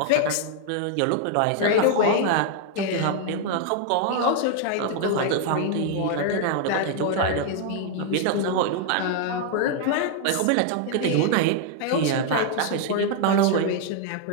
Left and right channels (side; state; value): both; different; correlation 0.00